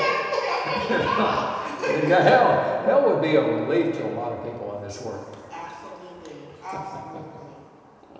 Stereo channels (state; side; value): identical; both; correlation 1.00